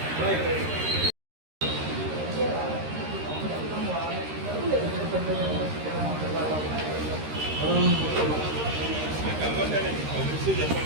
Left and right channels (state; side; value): late; left; 13 ms